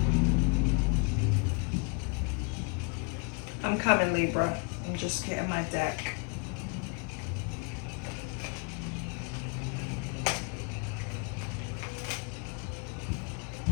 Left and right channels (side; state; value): right; quieter; 32.8 dB